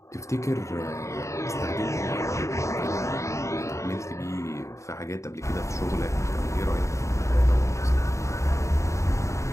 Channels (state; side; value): late; right; 0.14 ms